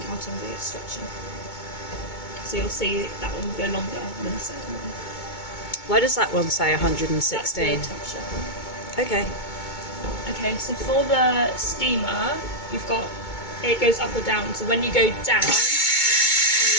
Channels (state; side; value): late; right; 2.2 ms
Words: counting the stretching. So you'll see that one will go longer than the second one. Why does that one say That's 116? the temperature. Okay. Okay, so for the steamer, you've got, it goes up or down. So when you go down, it's